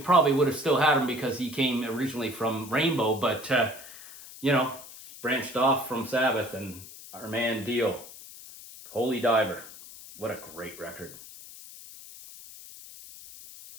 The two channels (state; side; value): noise; left; hiss, 16 dB below the sound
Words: would have still had him because he came originally from Rainbow, but, you know, branched off from Sabbath, and our man Dio, Holy Diver. What a great record.